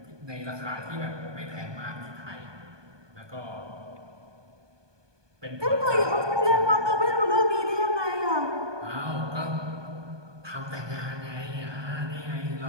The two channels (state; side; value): late; left; 1.2 ms